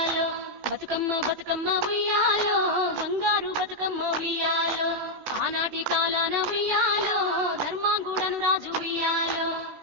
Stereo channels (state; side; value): late; left; 16 ms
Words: బతుకమ్మ బతుకమ్మ ఉయ్యాలో బంగారు బతుకమ్మ ఉయ్యాలో ఆనాటి కాలాన ఉయ్యాలో ధర్మాంగుడను రాజు ఉయ్యాలో